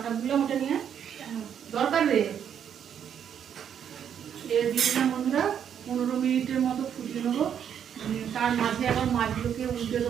গুলো ওটা নিয়ে দরকার রে। দিয়ে দিলাম বন্ধুরা, 15 মিনিটের মতো ফুটিয়ে নেবো। তার মাঝে আবার মাছগুলোকে উল্টে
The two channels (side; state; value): left; quieter; 8.6 dB